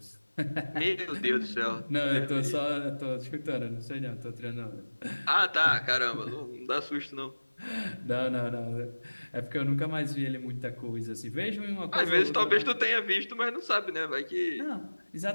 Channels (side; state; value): both; inverted; correlation -1.00